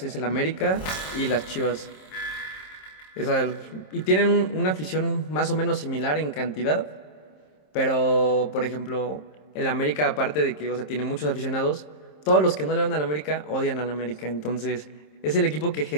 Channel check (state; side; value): late; right; 27 ms